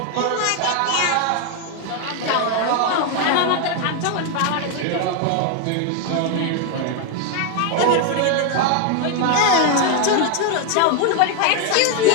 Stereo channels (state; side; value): different; both; correlation 0.01